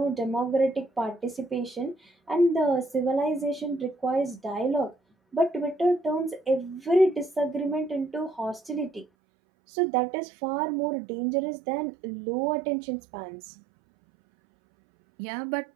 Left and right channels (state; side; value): drops out; left; at 9.1 s